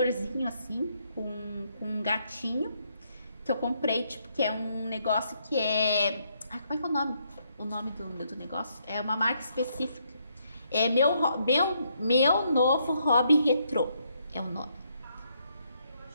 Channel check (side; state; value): both; inverted; correlation -0.74